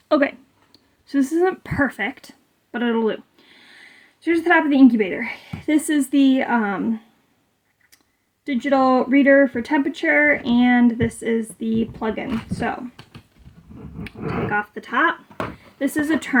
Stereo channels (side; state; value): both; identical; correlation 1.00